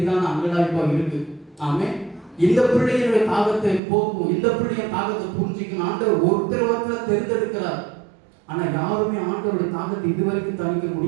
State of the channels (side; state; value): left; drops out; at 3.8 s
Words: அங்கலாய்ப்பா இருக்கு. ஆமென். இந்த பிள்ளைகளுடைய தாகத்தை போக்கும், இந்த பிள்ளைய தாகத்தை புரிஞ்சிக்கணும். ஆண்டவர் ஒருத்தர் தேர்ந்தெடுக்கிறார். ஆனா யாருமே ஆண்டவருடைய தாகத்தை இதுவரைக்கும் தணிக்க